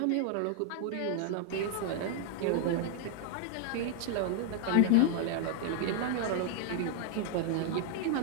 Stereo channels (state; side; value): different; both; correlation 0.00